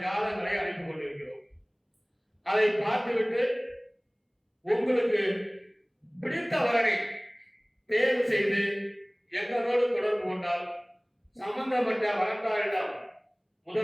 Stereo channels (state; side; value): identical; both; correlation 1.00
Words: ஜாதகங்களை அனுப்பி கொண்டிருக்கிறோம். அதை பார்த்துவிட்டு உங்களுக்கு பிடித்த வரனை தேர்வு செய்து எங்களோடு தொடர்பு கொண்டால் சம்பந்தப்பட்ட வரன்தாரிடம்